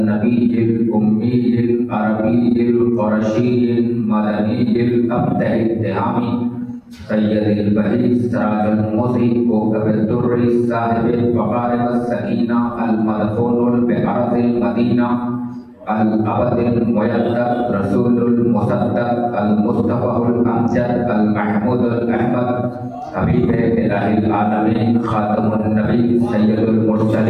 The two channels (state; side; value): identical; both; correlation 1.00